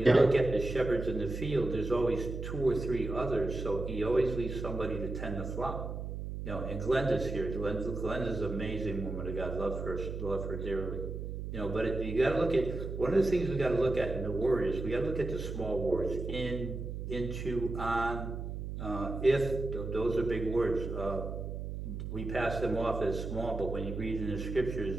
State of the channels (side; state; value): right; noise; hum, 6 dB below the sound